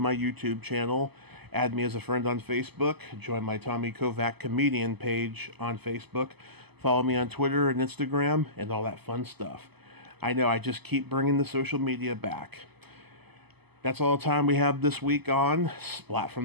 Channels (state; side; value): late; left; 0.99 ms